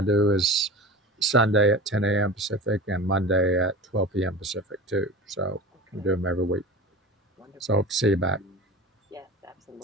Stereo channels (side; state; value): both; normal; correlation 0.34